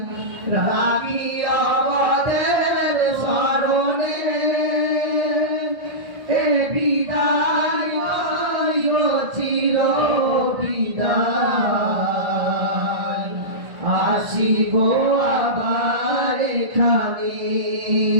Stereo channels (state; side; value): late; left; 1.3 ms